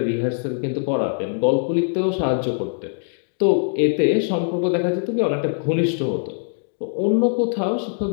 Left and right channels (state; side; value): silent; right; 63 dB below the other